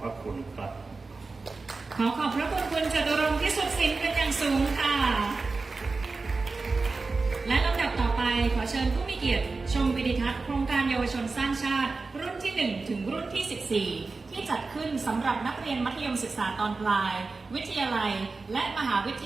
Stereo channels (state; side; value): quieter; left; 3.9 dB